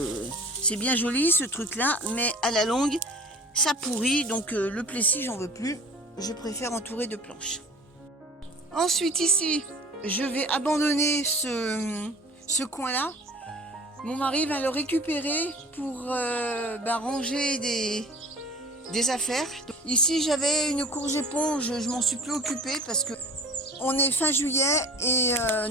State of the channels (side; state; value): both; normal; correlation 0.43